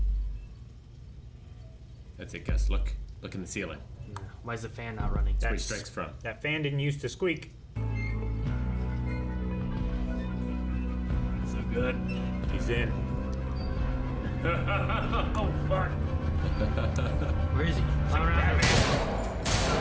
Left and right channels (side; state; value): both; identical; correlation 1.00